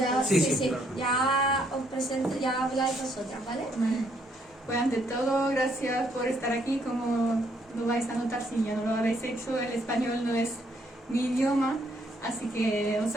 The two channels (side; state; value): both; normal; correlation 0.70